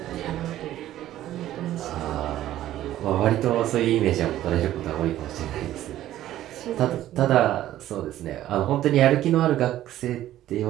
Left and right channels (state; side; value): quieter; left; 13.3 dB